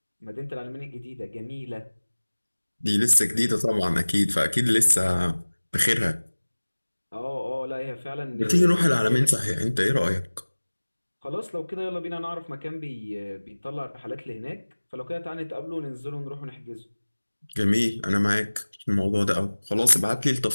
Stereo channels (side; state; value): both; inverted; correlation -1.00